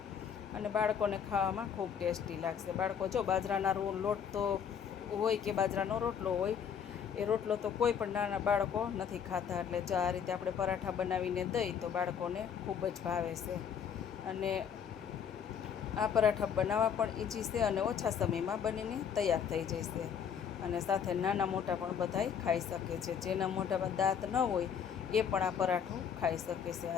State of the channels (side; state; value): right; quieter; 7.7 dB